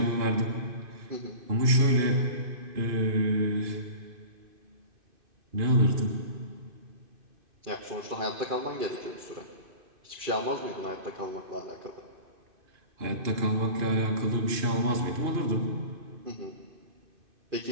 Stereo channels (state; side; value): late; left; 2.5 ms